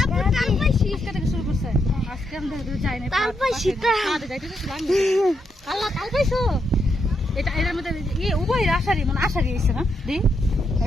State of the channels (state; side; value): normal; both; correlation 0.80